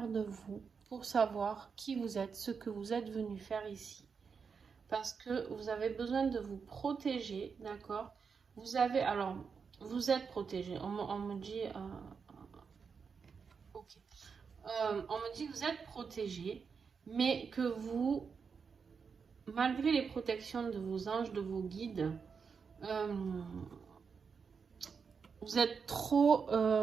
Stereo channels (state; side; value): quieter; left; 5.8 dB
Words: de vous pour savoir qui vous êtes, ce que vous êtes venu faire ici. Parce que vous avez besoin de vous protéger, d'accord. Vous avez, alors, vous êtes protégé. On me dit... ok. On me dit que vous êtes protégé, mais que vous, malgré les protections de vos anges, de vos guides, vous êtes trop...